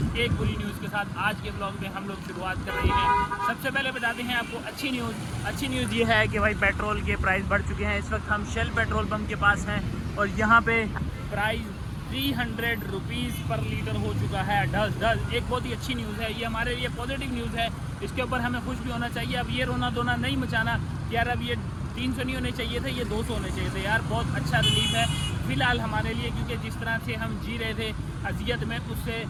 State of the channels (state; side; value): identical; both; correlation 1.00